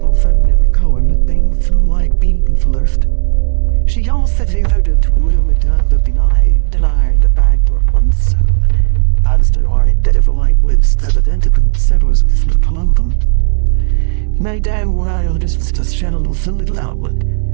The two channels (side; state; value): left; silent; digital silence